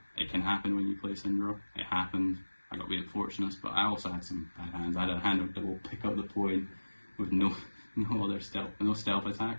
it can happen when you play Syndra. It happened. I got a bit fortunate, but I also had some bad hands. I had a hand that will pick up the point with no stealth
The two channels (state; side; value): inverted; both; correlation -1.00